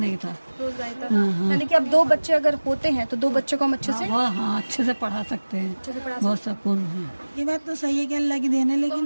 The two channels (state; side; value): inverted; both; correlation -1.00